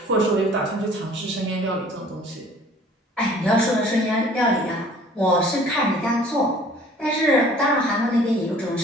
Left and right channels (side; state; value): both; normal; correlation 0.52